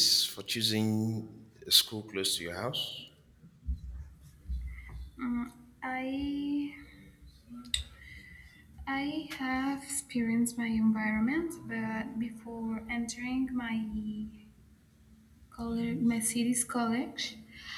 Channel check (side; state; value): both; identical; correlation 1.00